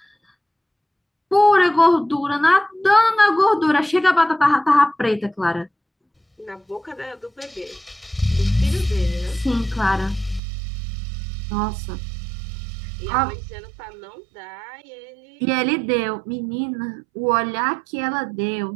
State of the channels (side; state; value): left; drops out; at 10.4 s